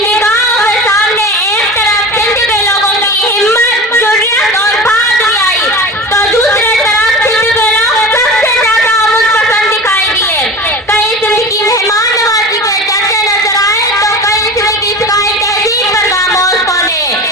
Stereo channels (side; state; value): both; normal; correlation 0.33